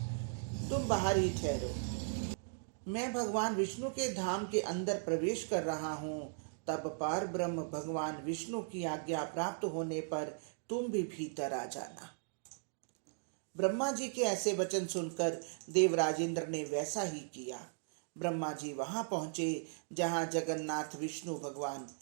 तुम बाहर ही ठहरो, मैं भगवान विष्णु के धाम के अंदर प्रवेश कर रहा हूँ। तब पार ब्रह्म भगवान विष्णु की आज्ञा प्राप्त होने पर तुम भी भीतर आ जाना। ब्रह्मा जी के ऐसे वचन सुनकर देवराज इंद्र ने वैसा ही किया। ब्रह्मा जी वहां पहुंचे जहां जगन्नाथ विष्णु भगवान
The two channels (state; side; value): silent; left; digital silence